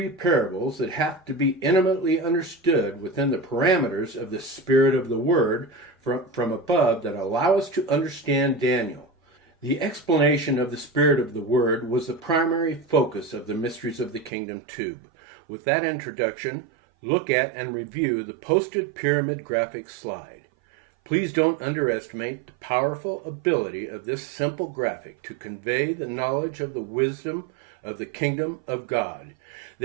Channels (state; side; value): drops out; left; at 14.3 s